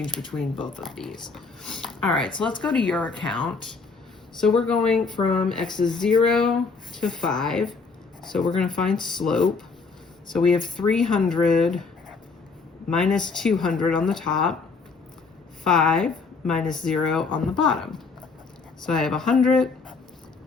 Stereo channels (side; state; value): right; quieter; 4.5 dB